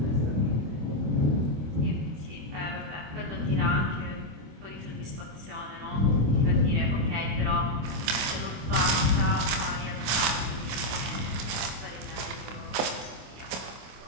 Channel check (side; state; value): left; late; 26 ms